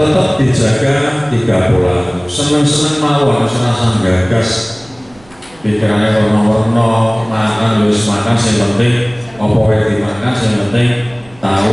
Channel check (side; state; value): right; noise; rumble, 27 dB below the sound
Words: dijaga 3 pola. Seneng-seneng mawon, serasa gagas, pikirannya warna-warna, makan harus makan. Yang penting apa yang dimakan, yang penting